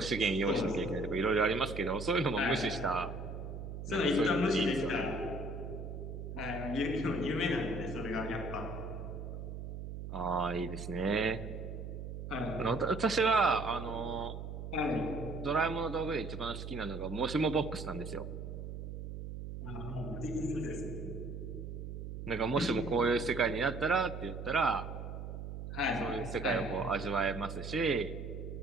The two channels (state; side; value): noise; right; hum, 7 dB below the sound